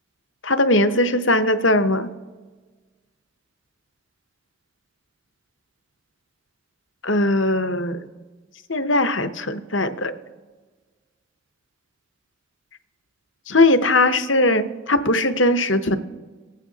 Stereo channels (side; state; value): both; normal; correlation 0.02